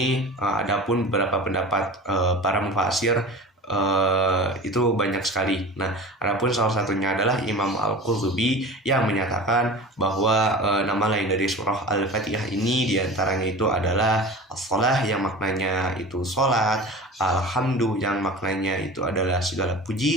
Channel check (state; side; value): normal; both; correlation 0.35